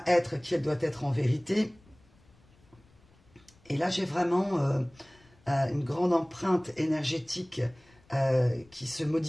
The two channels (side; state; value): left; noise; rumble, 29 dB below the sound